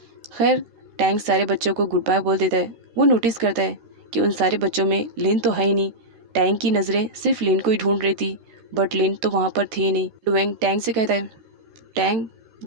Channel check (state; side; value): late; left; 13 ms